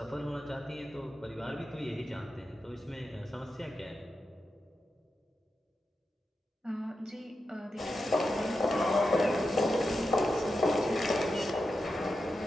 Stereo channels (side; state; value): both; normal; correlation 0.89